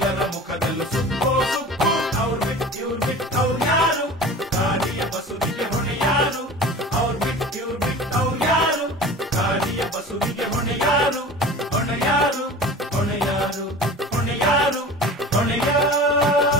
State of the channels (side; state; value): both; normal; correlation 0.37